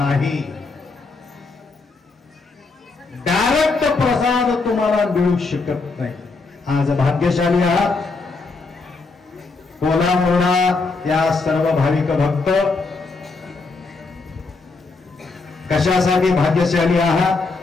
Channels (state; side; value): quieter; right; 3.9 dB